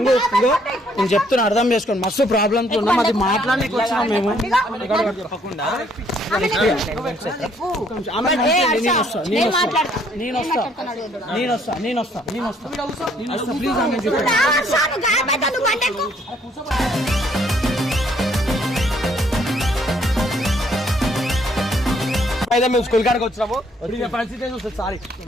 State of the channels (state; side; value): normal; both; correlation 0.66